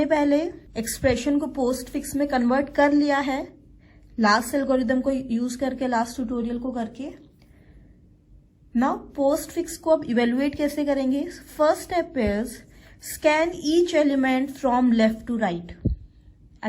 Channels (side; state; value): both; identical; correlation 1.00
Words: पहले एक्सप्रेशन को पोस्ट फिक्स में कन्वर्ट कर लिया है लास्ट एल्गोरिथम को यूज करके, लास्ट ट्यूटोरियल को करके। नाउ पोस्ट फिक्स को अब इवेल्युएट कैसे करेंगे। First step is scan each element from left to right.